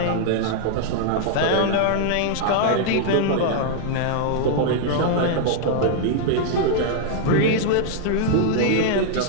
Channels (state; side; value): different; both; correlation -0.01